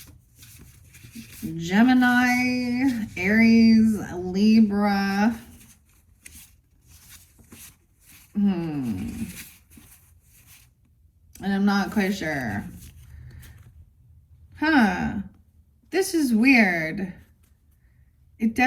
Gemini, Aries, Libra. And I'm not quite sure. Huh. This is weird. It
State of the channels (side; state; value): both; identical; correlation 1.00